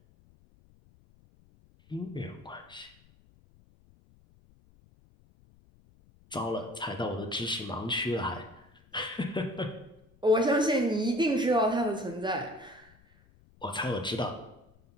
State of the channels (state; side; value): noise; left; rumble, 29 dB below the sound